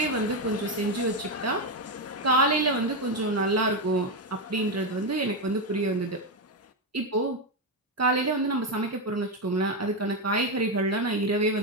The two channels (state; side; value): normal; both; correlation 0.07